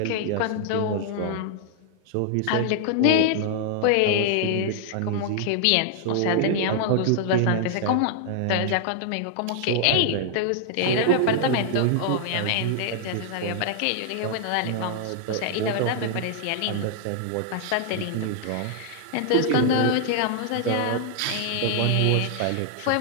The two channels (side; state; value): both; different; correlation -0.01